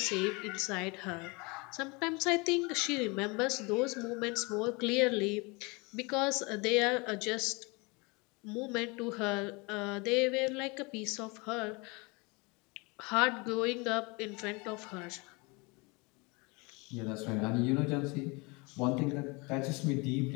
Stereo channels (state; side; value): quieter; right; 27.9 dB